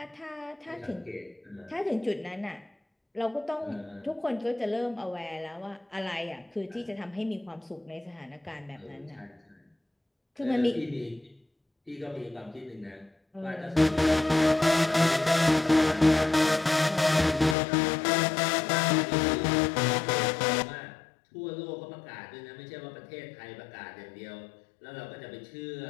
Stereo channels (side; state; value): right; drops out; at 17.6 s